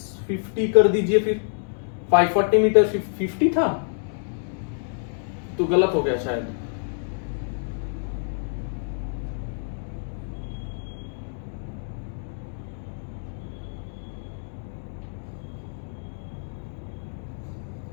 50 कर दीजिए. फिर 540 मीटर 50 था, तो गलत हो गया शायद.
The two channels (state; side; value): silent; right; digital silence